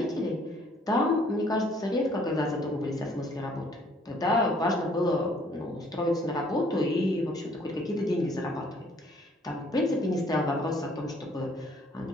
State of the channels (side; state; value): both; normal; correlation 0.61